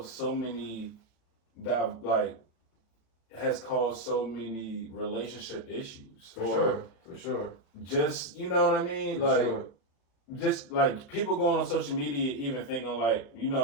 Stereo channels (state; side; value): late; right; 36 ms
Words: so many relationship issues. For sure. Just what I mean? Just like people going on social media, even thinking like,